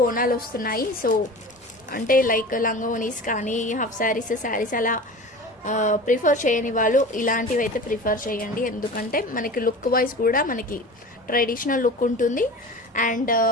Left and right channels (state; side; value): normal; both; correlation 0.35